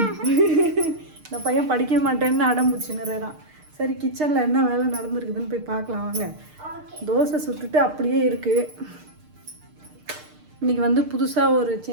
இந்த பையன் படிக்க மாட்டேன்னு அடம்பிடிச்சுன்னுறான். சரி, கிச்சனில் என்ன வேலை நடந்துருக்குதுன்னு போய் பார்க்கலாம் வாங்க. தோசை சுட்டுட்டு அப்படியே இருக்குது. இன்றைக்கி வந்து புதுசாக ஒரு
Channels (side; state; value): left; late; 6.6 ms